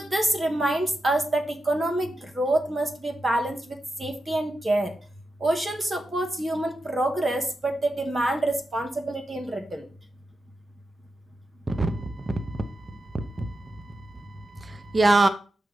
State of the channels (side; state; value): both; normal; correlation 0.89